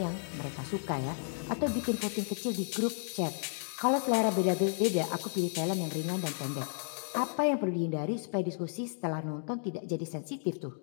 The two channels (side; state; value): right; silent; digital silence